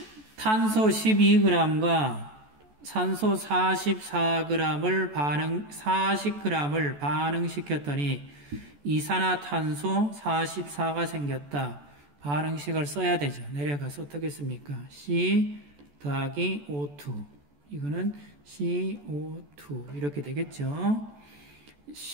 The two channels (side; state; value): left; late; 14 ms